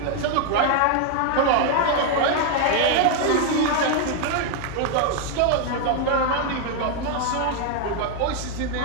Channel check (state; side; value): different; both; correlation 0.00